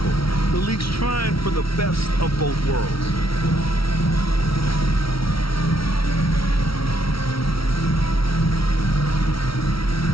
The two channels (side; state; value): right; late; 0.75 ms